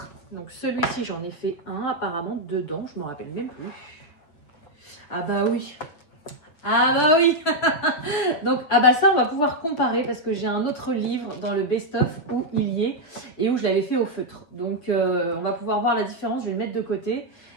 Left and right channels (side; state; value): right; late; 6.7 ms